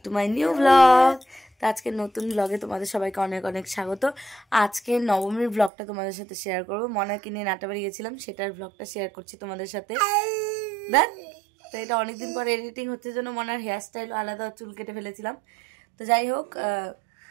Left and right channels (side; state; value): left; drops out; at 5.7 s